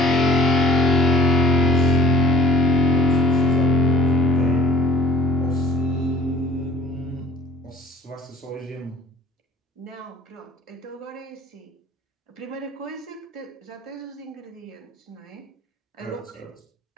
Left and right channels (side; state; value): both; normal; correlation 0.49